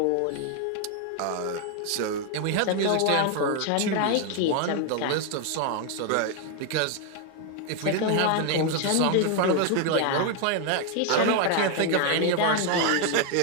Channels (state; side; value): different; both; correlation 0.01